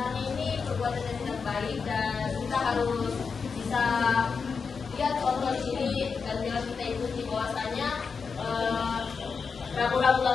ini perbuatan yang tidak baik dan kita harus bisa lihat contoh di sini dan jangan kita ikuti bahwasanya rambu-rambu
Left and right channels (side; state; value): right; quieter; 5.4 dB